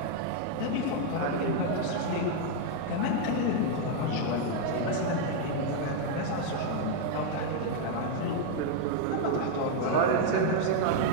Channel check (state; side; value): different; both; correlation 0.00